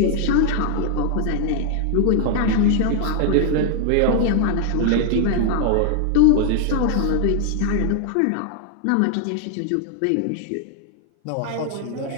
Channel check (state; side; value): different; both; correlation 0.00